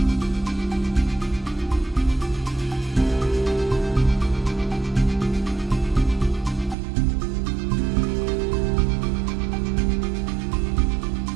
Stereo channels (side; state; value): left; drops out; at 6.8 s